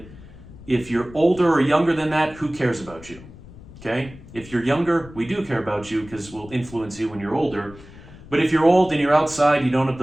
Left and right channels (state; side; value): noise; left; rumble, 19 dB below the sound